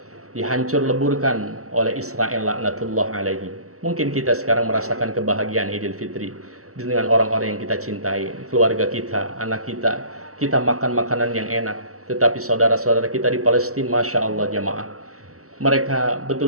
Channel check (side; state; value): left; late; 0.65 ms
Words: dihancur leburkan oleh Israel laknatullah alaihi. Mungkin kita sekarang merasakan kebahagiaan Idul Fitri dengan orang-orang yang kita cintai, keluarga kita, anak kita. Kita makan makanan yang enak. Tetapi saudara-saudara kita di Palestina, Masya Allah jamaah, mereka